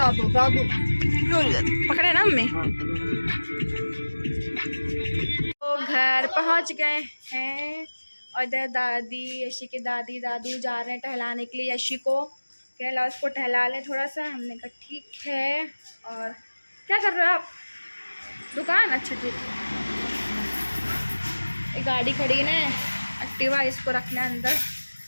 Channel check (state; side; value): inverted; both; correlation -1.00